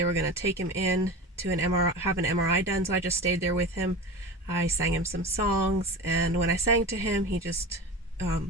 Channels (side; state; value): both; normal; correlation 0.29